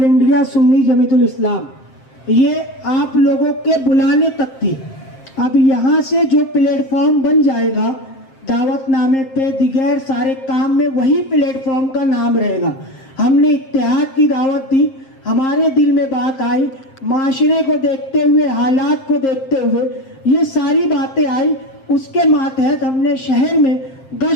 انڈیا سنی جمعیت الاسلام. یہ آپ لوگوں کے بلانے تک تھی. اب یہاں سے جو پلیٹ فارم بن جائے گا، دعوت نامے پہ دیگر سارے کام میں وہی پلیٹ فارم کا نام رہے گا. ہم نے اتحاد کی دعوت دی، ہمارے دل میں بات آئی، معاشرے کو دیکھتے ہوئے، حالات کو دیکھتے ہوئے یہ ساری باتیں آئی. اس کے ماتحت ہم نے شہر میں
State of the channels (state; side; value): late; right; 7.6 ms